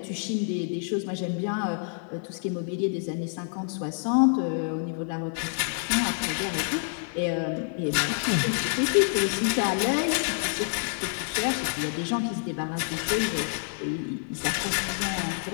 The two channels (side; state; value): right; silent; digital silence